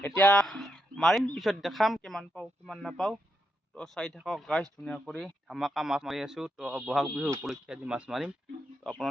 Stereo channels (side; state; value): both; normal; correlation 0.83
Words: এতিয়া মাৰিম, পিছত দেখাম কিমান পাওঁ কিমান নাপাওঁ। তো চাই থাকক গাইছ ধুনীয়া কৰি ধামাকা মাছ মাৰি আছোঁ। তো বহাগ বিহুৰ উপলক্ষে আজি মাছ মাৰিম, তো